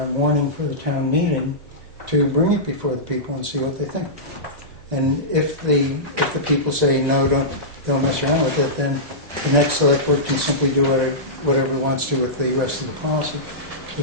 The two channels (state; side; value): normal; both; correlation -0.16